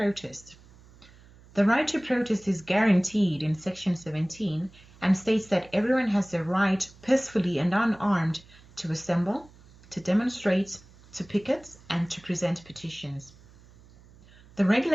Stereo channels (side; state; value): right; noise; hum, 25 dB below the sound